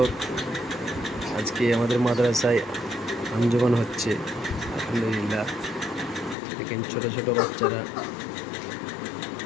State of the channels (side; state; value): right; drops out; at 6.4 s